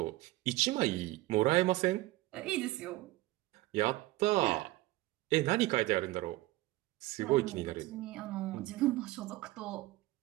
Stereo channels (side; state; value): left; quieter; 18.5 dB